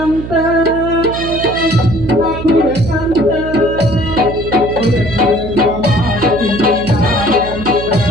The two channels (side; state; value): right; noise; hum, 9 dB below the sound